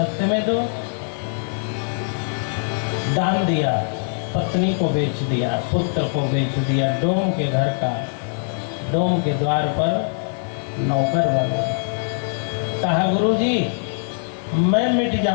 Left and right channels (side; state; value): right; silent; 64 dB below the other